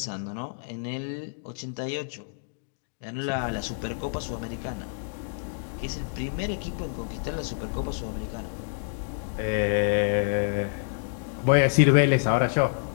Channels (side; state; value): right; silent; digital silence